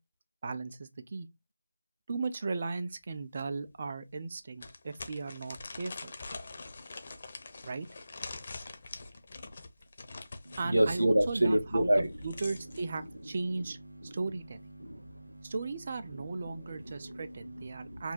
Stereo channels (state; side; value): inverted; both; correlation -0.95